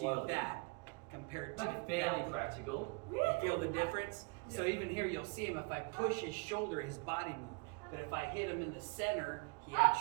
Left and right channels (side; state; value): left; quieter; 31.5 dB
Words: that compared to Make it fairly that. practical. You feel the difference? So Yeah. even here, you'll see him. If I push his shoulder, his body moves. But if I hit him in the center, he